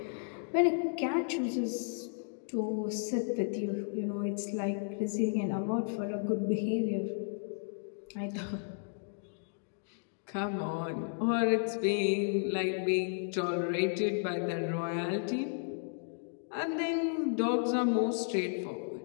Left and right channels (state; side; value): silent; right; digital silence